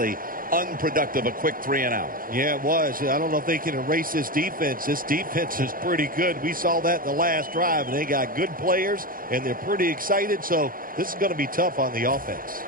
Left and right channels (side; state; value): left; late; 0.41 ms